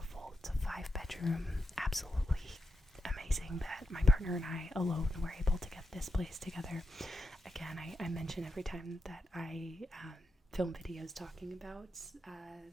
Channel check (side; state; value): both; normal; correlation 0.87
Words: It's a 5-bedroom, absolutely amazing that my partner and I alone were able to get this place together. Again, I mention every time that I film videos talking about